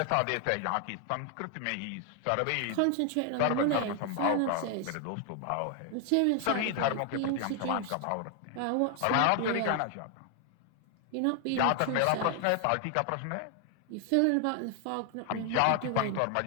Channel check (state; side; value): different; both; correlation 0.00